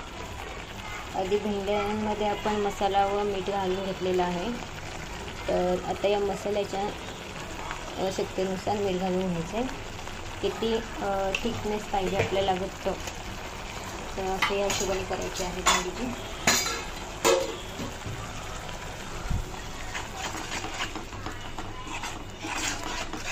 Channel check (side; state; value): both; identical; correlation 1.00